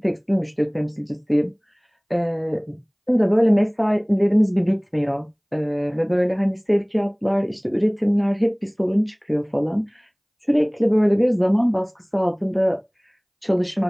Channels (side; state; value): both; identical; correlation 1.00